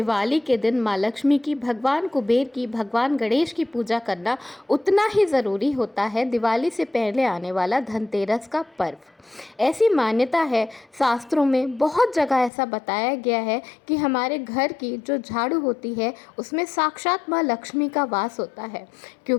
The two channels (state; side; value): drops out; right; at 12.5 s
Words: के दिन माँ लक्ष्मी की, भगवान कुबेर की, भगवान गणेश की पूजा करना, उतना ही ज़रूरी होता है दिवाली से पहले आने वाला धनतेरस का पर्व। ऐसी मान्यता है, शास्त्रों में बहुत जगह ऐसा बताया गया है कि हमारे घर की जो झाड़ू होती है उसमें साक्षात माँ लक्ष्मी का वास होता है,